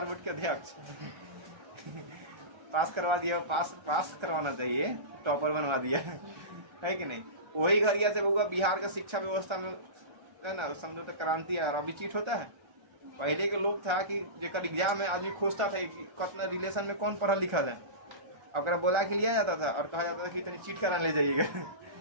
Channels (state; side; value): late; left; 1.3 ms